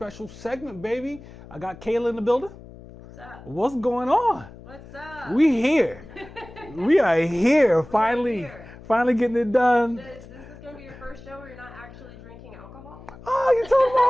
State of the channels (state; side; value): noise; left; hum, 18 dB below the sound